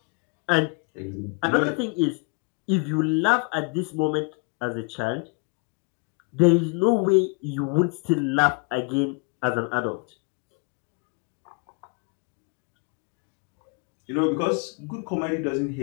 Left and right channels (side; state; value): right; quieter; 32.5 dB